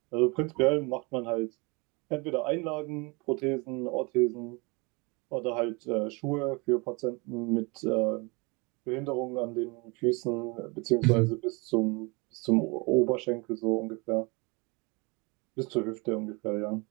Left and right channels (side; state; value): left; quieter; 28.2 dB